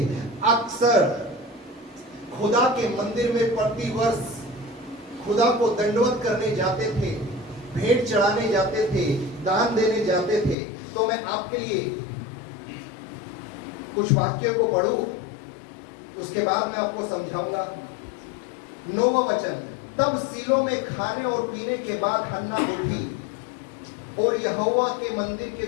अक्सर खुदा के मंदिर में प्रतिवर्ष खुदा को दंडवत करने जाते थे, भेंट चढ़ाने जाते थे, दान देने जाते थे। तो मैं आपके लिए कुछ वाक्यों को पढ़ूं, उसके बाद मैं आपको समझाऊंगा। 9वां वचन, तब सीलो में खाने और पीने के बाद हन्ना उठी और यहोवा के मंदिर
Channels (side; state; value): right; drops out; at 10.6 s